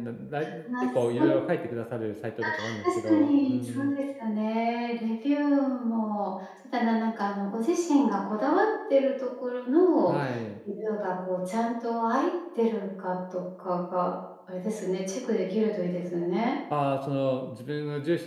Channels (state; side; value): identical; both; correlation 1.00